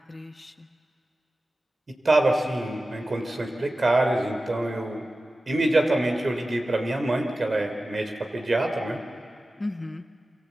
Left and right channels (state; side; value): normal; both; correlation 0.95